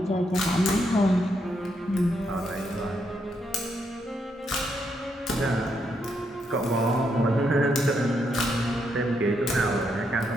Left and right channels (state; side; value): normal; both; correlation 0.78